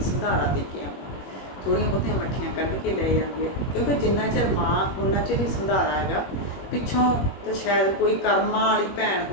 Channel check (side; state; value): right; late; 21 ms